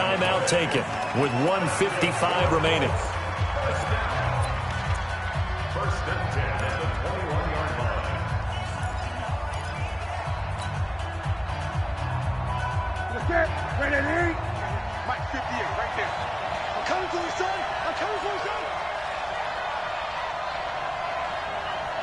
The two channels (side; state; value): both; identical; correlation 1.00